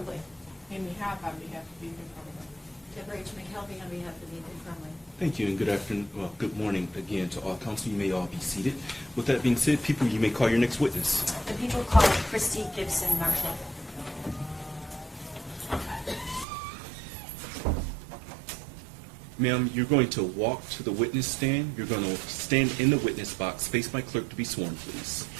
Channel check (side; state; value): left; drops out; at 16.4 s